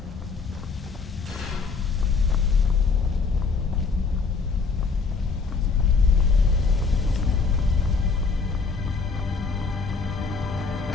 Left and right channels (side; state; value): right; quieter; 4.7 dB